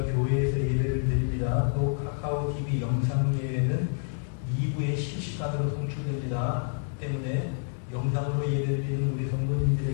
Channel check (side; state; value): right; silent; digital silence